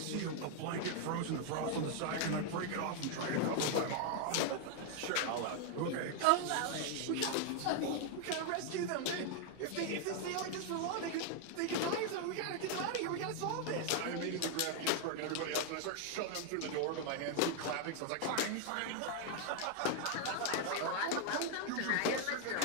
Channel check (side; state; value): both; different; correlation 0.00